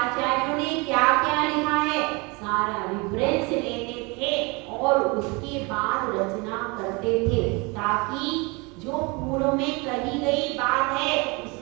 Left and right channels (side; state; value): left; quieter; 27.9 dB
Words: ने क्या क्या लिखा है सारा रेफरेंस लेते थे और उसके बाद रचना करते थे ताकि जो पूर्व में कही गई बात है